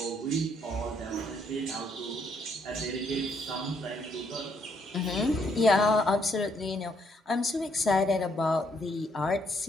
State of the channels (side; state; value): both; normal; correlation 0.71